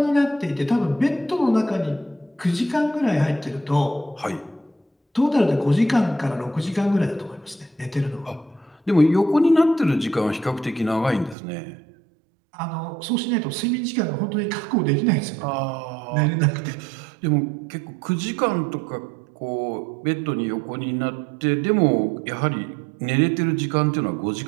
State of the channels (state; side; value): drops out; left; at 11.4 s